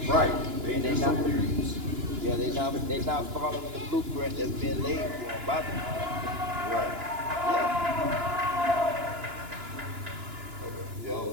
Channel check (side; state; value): left; late; 2.9 ms